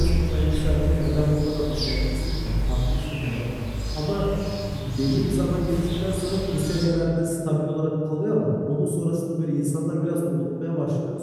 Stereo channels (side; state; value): both; identical; correlation 1.00